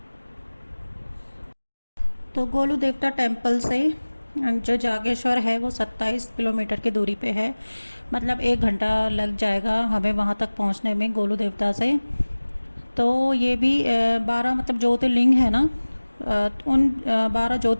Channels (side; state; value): both; inverted; correlation -1.00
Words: तो गोलू देवता टेम्पल से जो जागेश्वर है वो 27 किलोमीटर की दूरी पे है, मतलब 1 घंटा लग जाएगा हमें वहाँ तक पहुँचने में गोलू देवता से। तो ये भी 12 मतलब ज्योतिर्लिंग है ना, उन 12